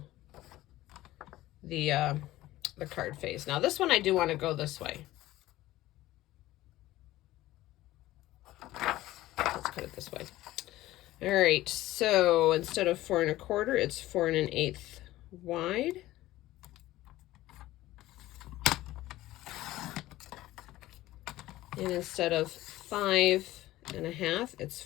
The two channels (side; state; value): right; quieter; 16.3 dB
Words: the card face. Now this one I do want to go this way. Let's cut it this way. All right, so instead of 4 1/4, it's 4 1/8 wide. And instead of 5 1/2, it's